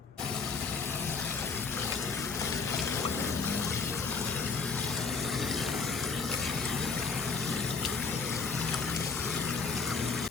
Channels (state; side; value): quieter; right; 4.7 dB